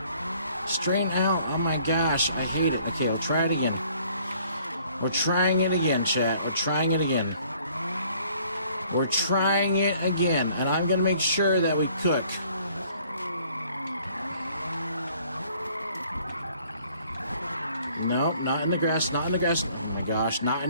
straighten out. Oh my gosh, I hate it. Okay, we'll try it again. We're trying it again, chat. We're trying it again. We're trying it again. And I'm going to make sure that we cook. Nope, not in the grass. Not in the grass. Oh my gosh, not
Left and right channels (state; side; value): inverted; both; correlation -0.59